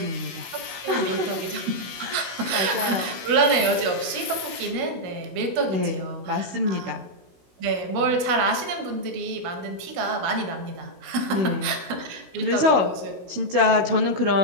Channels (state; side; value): late; left; 17 ms